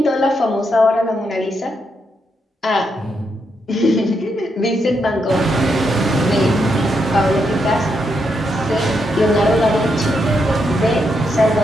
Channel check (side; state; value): both; normal; correlation 0.81